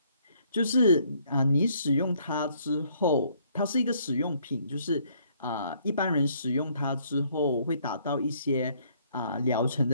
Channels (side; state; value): both; inverted; correlation -0.65